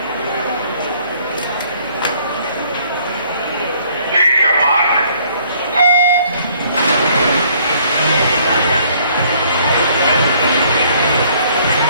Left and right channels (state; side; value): inverted; both; correlation -0.62